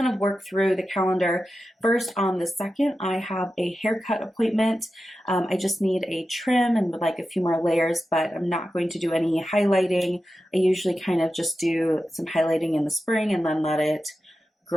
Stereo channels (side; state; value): both; normal; correlation 0.92